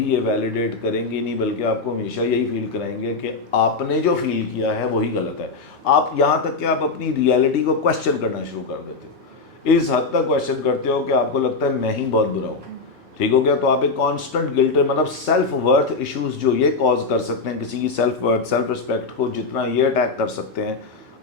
یہ ویلیڈیٹ کریں گے نہیں, بلکہ آپ کو ہمیشہ یہی فیل کرائیں گے کہ آپ نے جو فیل کیا ہے وہی غلط ہے. آپ یہاں تک کہ آپ اپنی ریئلٹی کو کویسچن کرنا شروع کر دیتے ہو, اس حد تک کویسچن کرتے ہو کہ آپ کو لگتا ہے میں ہی بہت برا ہوں, ٹھیک ہو گیا. تو آپ ایک کانسٹنٹ گلٹ, مطلب سیلف ورتھ ایشوز جو یہ کاز کر سکتے ہیں کسی کی سیلف ورتھ, سیلف رسپیکٹ کو جتنا یہ اٹیک کر سکتے ہیں,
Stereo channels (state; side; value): quieter; right; 4.1 dB